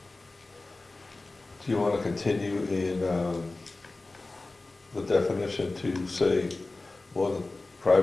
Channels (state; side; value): quieter; right; 3.2 dB